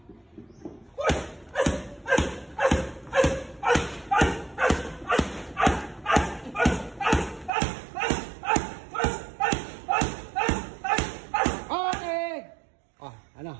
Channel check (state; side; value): drops out; left; at 7.5 s